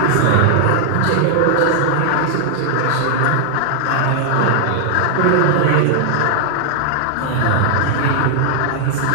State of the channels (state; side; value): different; both; correlation -0.01